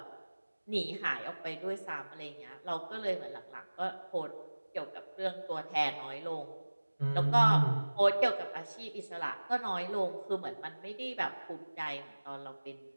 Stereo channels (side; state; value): both; inverted; correlation -1.00